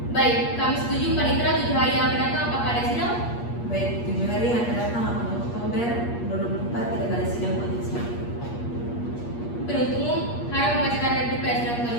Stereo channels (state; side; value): late; right; 8.5 ms